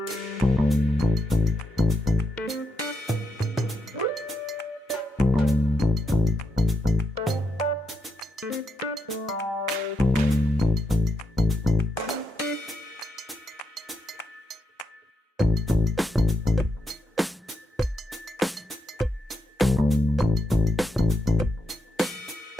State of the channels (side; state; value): both; normal; correlation 0.82